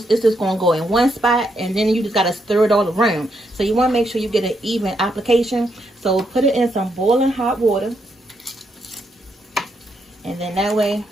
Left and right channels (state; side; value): normal; both; correlation 0.78